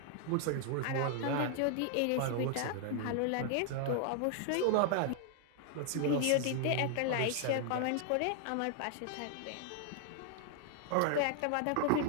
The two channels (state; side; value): different; both; correlation 0.00